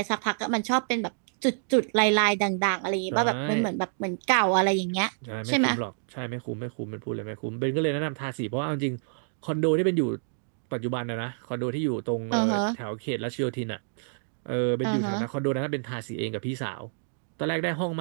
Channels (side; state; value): left; silent; digital silence